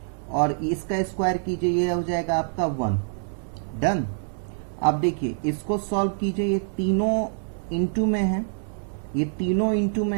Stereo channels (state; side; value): silent; left; 61 dB below the other